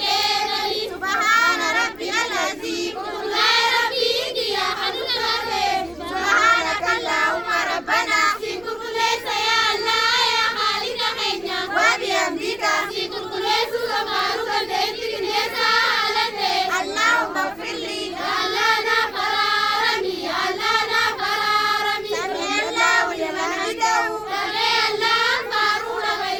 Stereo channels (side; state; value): left; noise; rumble, 25 dB below the sound